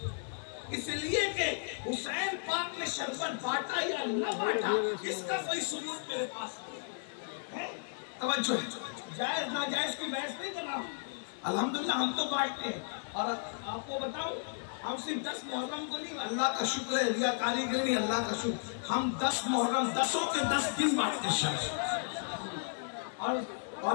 इसलिए कि हुसैन पाक ने शरबत बांटा या न बांटा, इसका कोई सबूत मेरे पास नहीं है। तवज्जो है, जायज नाजायज की बहस नहीं कर रहा हूँ। अल्हम्दुलिल्लाह हम तो बांटते हैं, और आपको बताओ हम सिर्फ 10 मुहर्रम को नहीं, अल्लाह का शुक्र है, रिया कारीगर नहीं, अल्लाह का शुक्र, हम 10 मुहर्रम 10 के 10 दिन बांटते शर्बत। और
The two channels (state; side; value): silent; right; 55 dB below the other